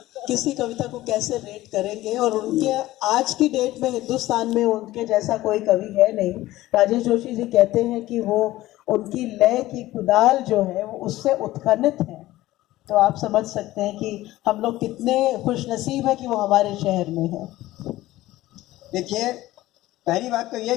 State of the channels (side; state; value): right; quieter; 16.5 dB